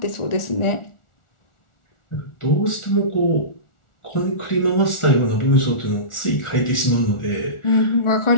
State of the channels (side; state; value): right; late; 1.4 ms